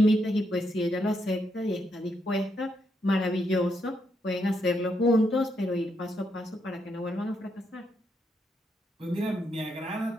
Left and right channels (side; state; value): both; normal; correlation 0.79